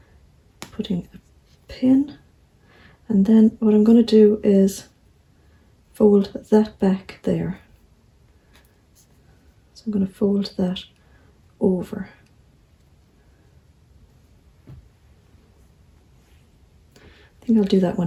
putting a pin, and then what I'm going to do is fold that back there. So I'm going to fold that over. think I'll do that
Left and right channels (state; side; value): identical; both; correlation 1.00